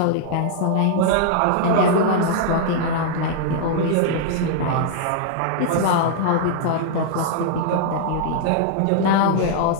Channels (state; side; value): different; both; correlation -0.01